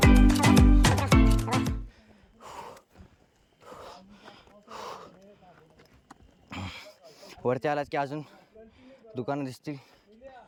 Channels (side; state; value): both; identical; correlation 1.00